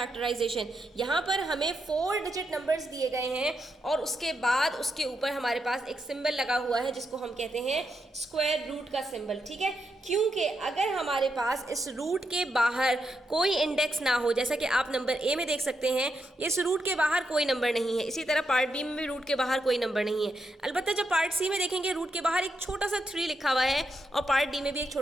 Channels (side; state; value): both; normal; correlation 0.83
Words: यहाँ पर हमें 4 डिजिट नंबर्स दिए गए हैं और उसके बाद उसके ऊपर हमारे पास एक सिंबल लगा हुआ है जिसको हम कहते हैं स्क्वायर रूट का सिंबल। ठीक है, क्योंकि अगर हमारे पास इस रूट के बाहर कोई इंडेक्स ना हो, जैसा कि आप नंबर ए में देख सकते हैं, इस रूट के बाहर कोई नंबर नहीं है। इसी तरह पार्ट बी में भी रूट के बाहर कोई नंबर नहीं है। अलबत्ता जब पार्ट सी में देखेंगे रूट के बाहर एक छोटा सा 3 लिखा हुआ है और पार्ट डी में भी एक